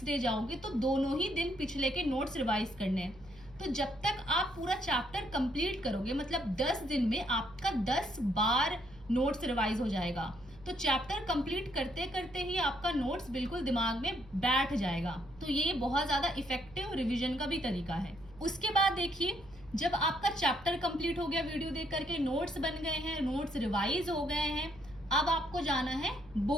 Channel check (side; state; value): right; noise; hum, 22 dB below the sound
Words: डे जाओगे तो दोनों ही दिन पिछले के नोट्स रिवाइज करने हैं। तो जब तक आप पूरा चैप्टर कंप्लीट करोगे, मतलब 10 दिन में आपका 10 बार नोट्स रिवाइज हो जाएगा। तो चैप्टर कंप्लीट करते करते ही आपका नोट्स बिल्कुल दिमाग में बैठ जाएगा। तो ये बहुत ज्यादा इफेक्टिव रिवीजन का भी तरीका है। उसके बाद देखिए जब आपका चैप्टर कंप्लीट हो गया, वीडियो देख करके नोट्स बन गए हैं, नोट्स रिवाइज हो गए हैं, अब आपको जाना है